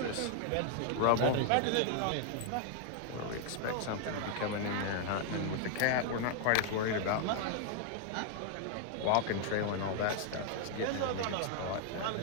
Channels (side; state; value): both; different; correlation 0.00